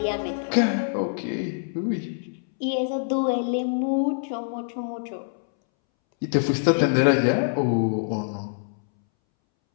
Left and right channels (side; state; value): right; silent; 62 dB below the other